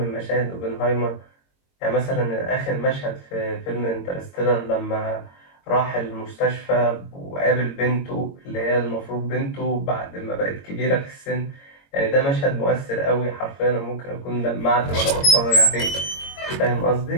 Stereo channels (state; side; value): late; right; 22 ms